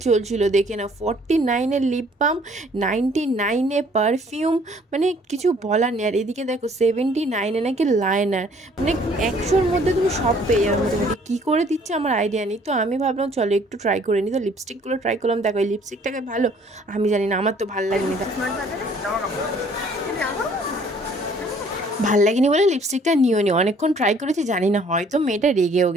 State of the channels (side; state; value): both; normal; correlation 0.59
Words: চলছিল, দেখে না, 49-এর লিপ বাম, 99-এ পারফিউম, মানে কিছু বলার নেই। আর এদিকে দেখো 79-এ নাকি লাইনার, মানে 100-র মধ্যে তুমি সব পেয়ে যাবে মোটামুটি। কী করে দিচ্ছে আমার আইডিয়া নেই। তো আমি ভাবলাম চলো একটু ট্রাই করে নিই। তো লিপস্টিকগুলো ট্রাই করলাম, দেখো এই লিপস্টিকটাকে ভালো, আমি জানি না, আমার তো ভালো লাগেনি। ভাল লাগেনি বলে লিপস্টিকটা নিও নি, অনেকক্ষণ ট্রাই করেছি, জানি না হয়তো মেয়েটা রেগেও